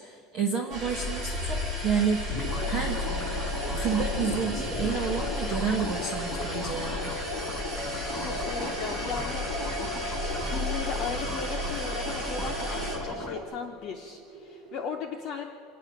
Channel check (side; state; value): both; normal; correlation 0.32